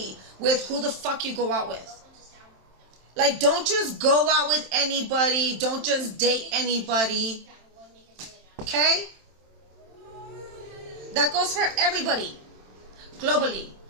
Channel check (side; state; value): left; late; 27 ms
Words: with who the fuck you go out with. Like, don't just go out with anybody. Don't just date anybody. Okay? That goes for everybody. Globally.